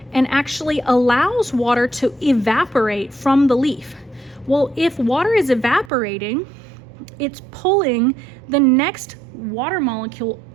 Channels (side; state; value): left; drops out; at 5.9 s